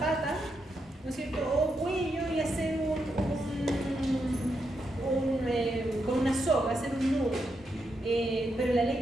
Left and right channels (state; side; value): normal; both; correlation 0.83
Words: ¿no es cierto?, o cuello, y hacer con una soga, hacer un nudo. Pero la